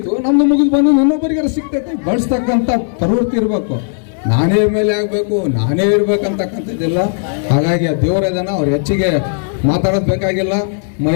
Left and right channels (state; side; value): silent; right; 70 dB below the other